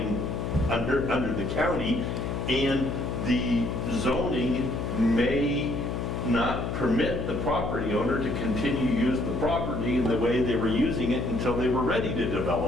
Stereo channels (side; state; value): left; noise; hum, 2 dB below the sound